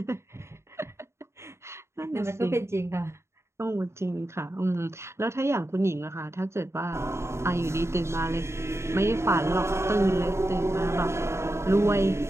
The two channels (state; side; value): late; left; 0.13 ms